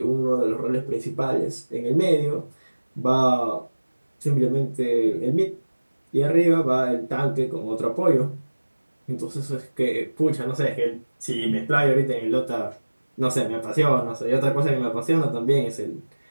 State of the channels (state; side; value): inverted; both; correlation -1.00